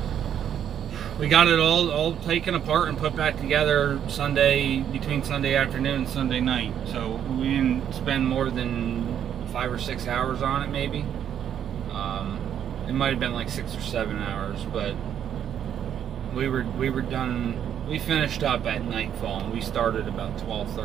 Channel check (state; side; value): quieter; left; 9.4 dB